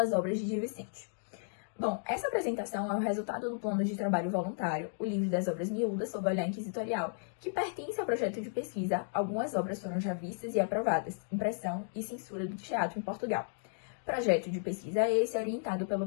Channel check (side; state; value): right; silent; digital silence